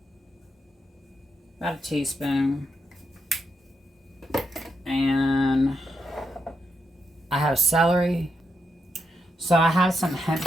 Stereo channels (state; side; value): normal; both; correlation 0.83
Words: About a teaspoon. And I have celery. So I have some hemp